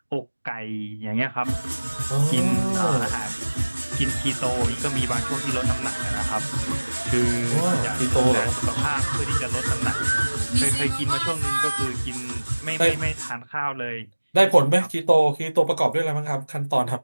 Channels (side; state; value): both; inverted; correlation -1.00